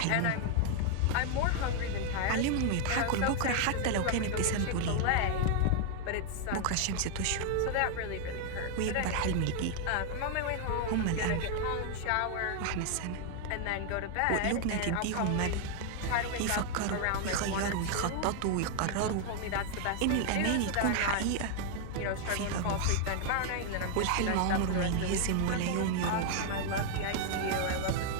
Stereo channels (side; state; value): both; different; correlation 0.00